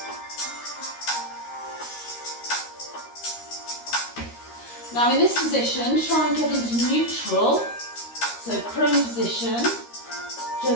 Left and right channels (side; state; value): right; late; 13 ms